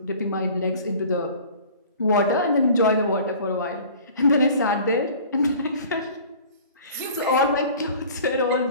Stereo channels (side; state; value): both; inverted; correlation -0.45